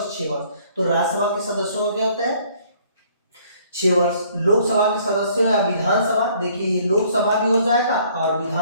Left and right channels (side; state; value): both; inverted; correlation -0.60